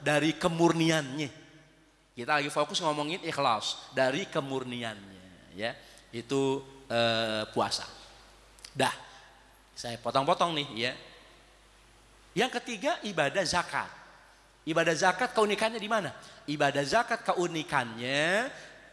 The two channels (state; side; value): identical; both; correlation 1.00